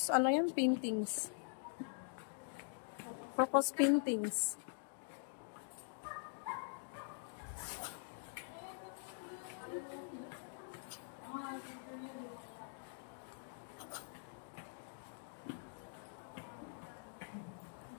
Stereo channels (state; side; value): silent; right; digital silence